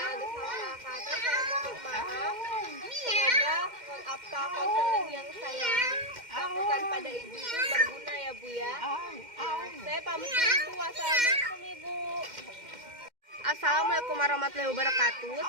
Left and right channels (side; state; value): left; late; 2.1 ms